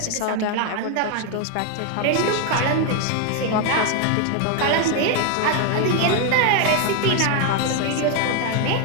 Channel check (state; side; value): different; both; correlation 0.01